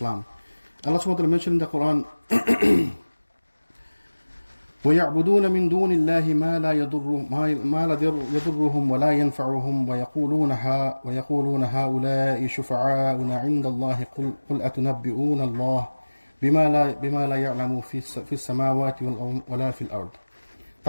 Allah subhanahu wa ta'ala mentioned in the Quran, وَيَعْبُدُونَ مِن دُونِ اللَّهِ مَا لَا يَضُرُّهُمْ وَلَا يَنْفَعُهُمْ وَيَقُولُونَ هَؤُلَاءِ شُفَعَاؤُنَا عِندَ اللَّهِ قُلْ أَتُنَبِّئُونَ اللَّهَ بِمَا لَا يَعْلَمُ فِي السَّمَاوَاتِ وَلَا فِي الْأَرْضِ।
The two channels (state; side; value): inverted; both; correlation -1.00